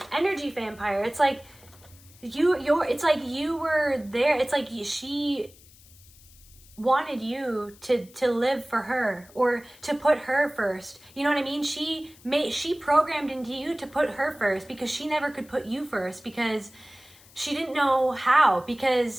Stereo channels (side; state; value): left; noise; hiss, 25 dB below the sound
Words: energy vampire. It's like it's like you were there. It's like she wanted you to live for her, or to put her first. You know what I mean? She programmed into you to put her first, because she never could put you first, because she didn't know how,